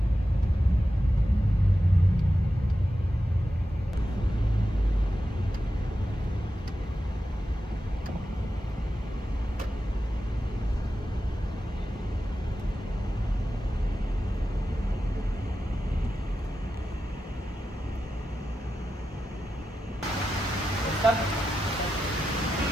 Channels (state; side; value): normal; both; correlation 0.91